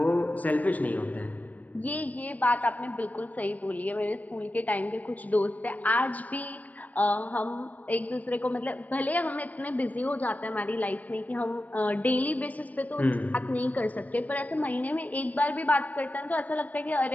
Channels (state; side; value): late; right; 0.075 ms